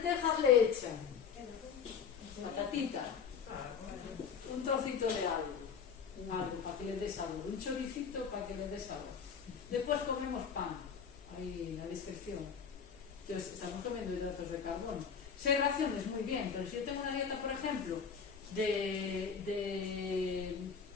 le echan patatita, un trocito de algo para que le des sabor, un choricito para que le des sabor. Después comemos pan, ahí en la descripción. Entonces, estamos comiendo hidratos de carbono. 6 raciones, muy bien, pero si yo tengo una dieta, por ejemplo, de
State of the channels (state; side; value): quieter; right; 6.7 dB